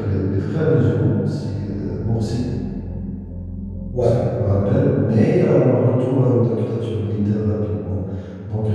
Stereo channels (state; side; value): identical; both; correlation 1.00